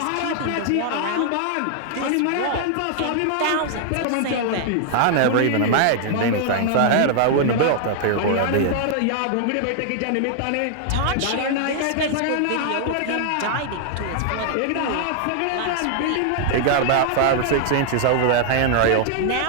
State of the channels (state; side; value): different; both; correlation 0.00